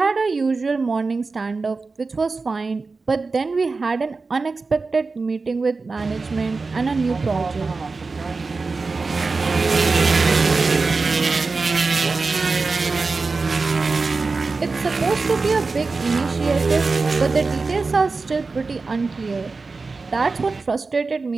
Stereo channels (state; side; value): quieter; left; 4.1 dB